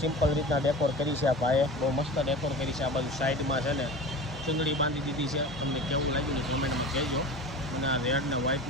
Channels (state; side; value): normal; both; correlation 0.33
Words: રીતના ડેકોર કરી છે આ ભાઈએ. બહુ મસ્ત ડેકોર કરી છે. આ બાજુ સાઈડમાં છે ને ચૂંદડી બાંધી દીધી છે. તમને કેવું લાગ્યું ને કમેન્ટમાં કહેજો. અને આ રેડ ને